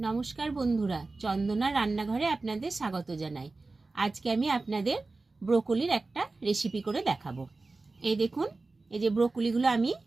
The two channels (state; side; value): quieter; left; 3.5 dB